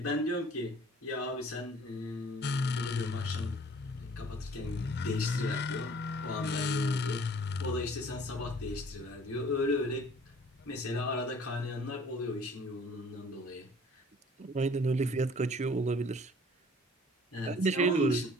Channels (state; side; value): normal; both; correlation 0.53